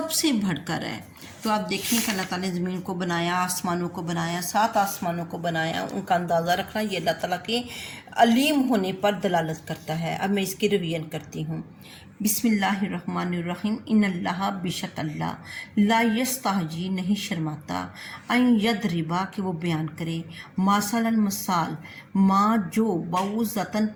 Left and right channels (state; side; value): identical; both; correlation 1.00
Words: سے بڑھ کر ہے۔ تو آپ دیکھیں کہ اللہ تعالیٰ نے زمین کو بنایا، آسمانوں کو بنایا، سات آسمانوں کو بنایا، ان کا اندازہ رکھنا یہ اللہ تعالیٰ کے علیم ہونے پر دلالت کرتا ہے۔ اب میں اس کی ریویژن کرتی ہوں۔ بسم اللہ الرحمن الرحیم، ان اللہ، بے شک اللہ، لا یستحجی، نہیں شرماتا، ان یضربا، کہ وہ بیان کرے، مثلا، مثال، ما، جو، بعوضۃ،